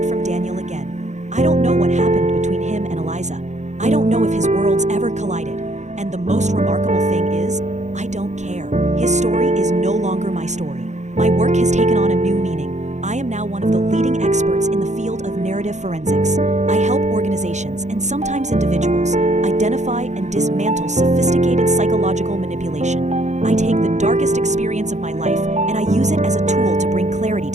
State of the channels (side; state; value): left; late; 0.34 ms